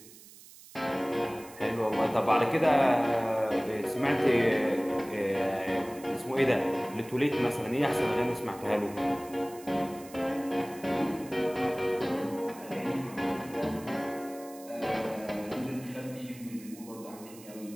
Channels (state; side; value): noise; right; hiss, 20 dB below the sound